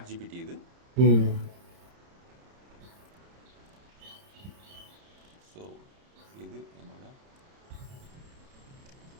ஜிபிடி. இது ஸோ இது என்னோட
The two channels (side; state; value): left; late; 30 ms